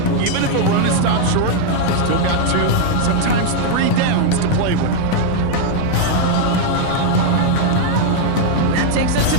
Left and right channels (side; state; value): both; different; correlation 0.00